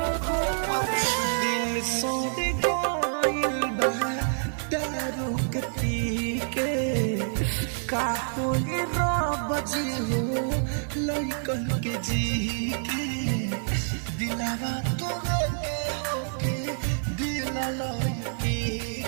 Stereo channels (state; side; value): silent; left; 57 dB below the other